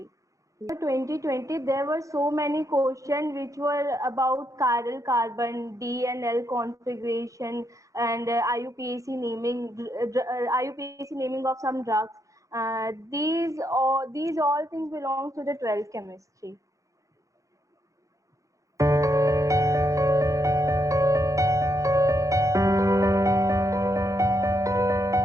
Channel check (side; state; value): left; late; 0.16 ms